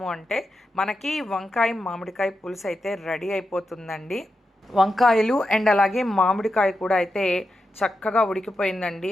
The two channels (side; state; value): both; normal; correlation 0.88